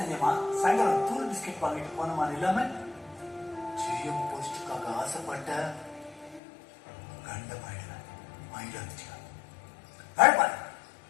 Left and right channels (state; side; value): drops out; right; at 6.4 s